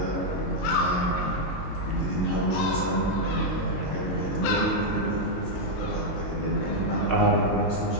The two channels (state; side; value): late; right; 22 ms